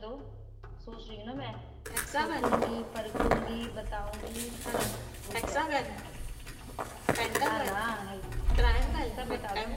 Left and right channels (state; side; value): identical; both; correlation 1.00